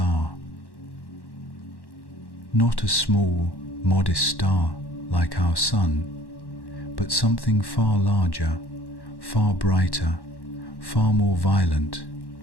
Not a small, modest star like our Sun, but something far larger, far brighter, far more violent.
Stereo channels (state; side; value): late; right; 1.1 ms